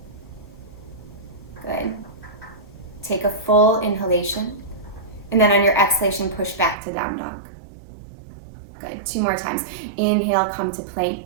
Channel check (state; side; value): drops out; left; at 6.8 s